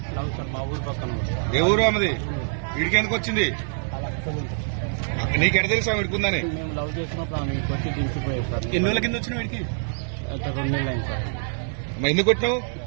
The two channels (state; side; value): silent; left; digital silence